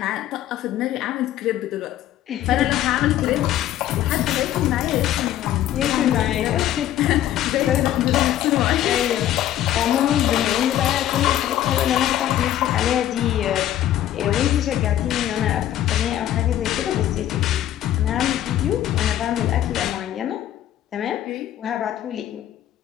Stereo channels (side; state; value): right; quieter; 12.4 dB